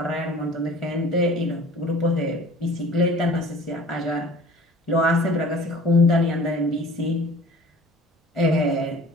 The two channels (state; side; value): normal; both; correlation 0.45